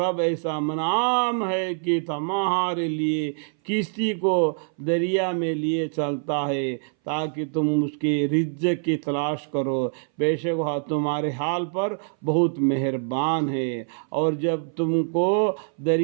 ایسا منعم ہے کہ تمہارے لیے کشتی کو دریا میں لیے چلتا ہے تاکہ تم اس کے رزق کی تلاش کرو، بے شک وہ تمہارے حال پر بہت مہربان ہے۔ اور جب تم کو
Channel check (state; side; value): silent; left; 60 dB below the other